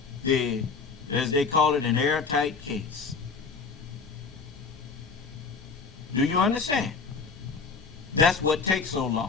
the as they call it, an airtight case. Do you understand? That's what takes so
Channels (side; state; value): right; quieter; 4.9 dB